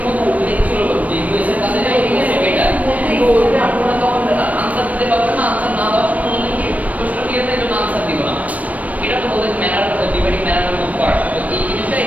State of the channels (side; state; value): left; late; 0.070 ms